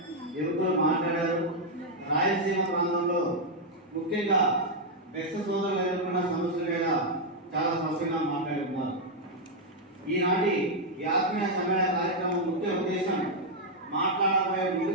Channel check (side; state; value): both; normal; correlation -0.02